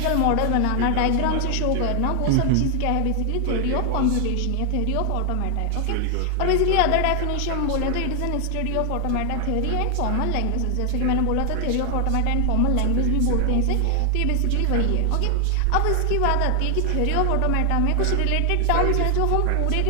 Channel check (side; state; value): both; different; correlation 0.00